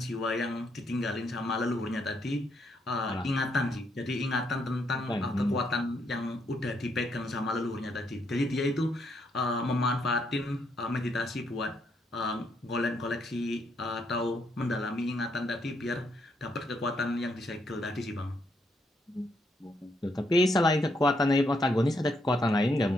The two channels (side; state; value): both; normal; correlation 0.75